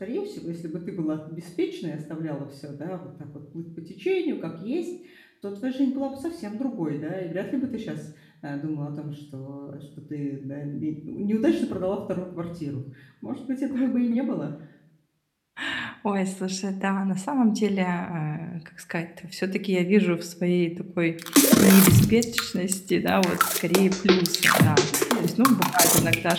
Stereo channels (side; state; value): both; identical; correlation 1.00